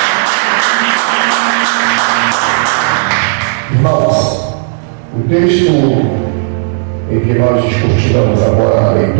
Irmãos, o texto em que nós discutiremos agora na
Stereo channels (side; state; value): left; silent; digital silence